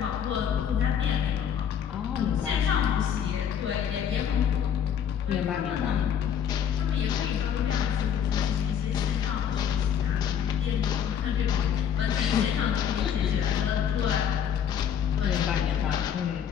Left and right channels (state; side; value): quieter; right; 8.6 dB